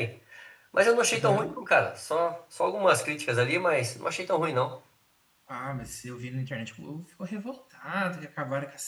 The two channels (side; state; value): both; identical; correlation 1.00